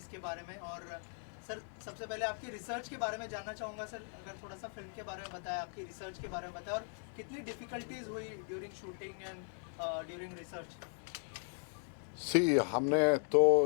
बारे में। और सर सबसे पहले आपकी रिसर्च के बारे में जानना चाहूँगा सर, अगर थोड़ा सा फिल्म के बारे में बताया, आपकी रिसर्च के बारे में बताया, और कितनी डिफ़िकल्टीज हुई during shooting and during research. हमने तो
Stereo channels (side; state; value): right; silent; 52 dB below the other